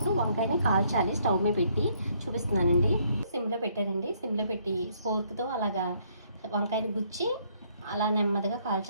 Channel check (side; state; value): both; inverted; correlation -0.68